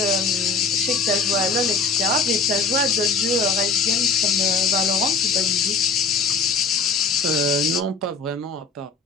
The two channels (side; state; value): right; quieter; 4.3 dB